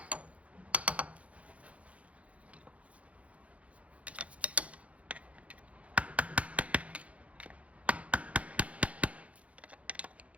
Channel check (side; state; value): left; late; 0.065 ms